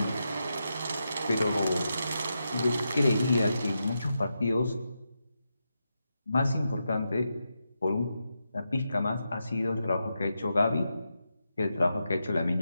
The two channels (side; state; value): both; inverted; correlation -0.87